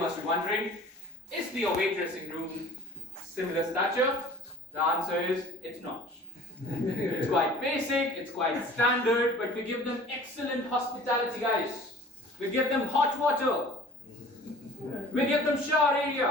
be wondering, is the away dressing room similar stature? The answer is, it's not. It's quite basic, it's quite standard, but we give them excellent hospitality, guys. We give them hot water. We give them shower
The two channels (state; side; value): normal; both; correlation 0.46